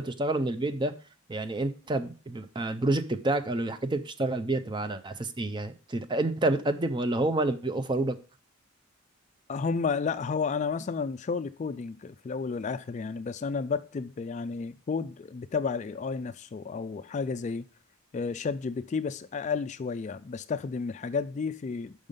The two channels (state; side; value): normal; both; correlation 0.43